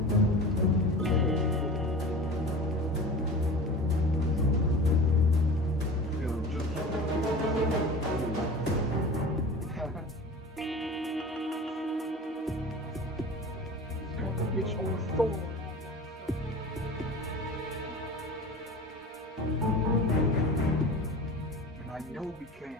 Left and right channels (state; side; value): normal; both; correlation 0.35